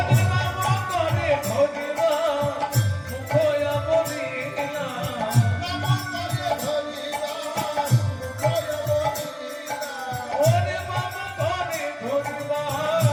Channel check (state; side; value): identical; both; correlation 1.00